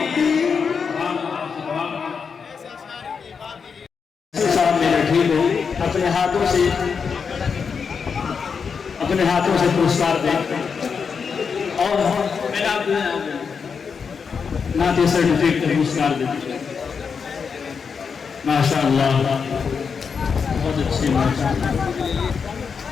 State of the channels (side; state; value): right; quieter; 5.9 dB